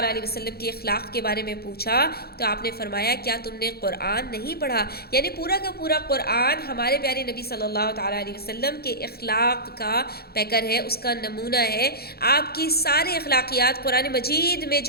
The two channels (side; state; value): right; late; 0.46 ms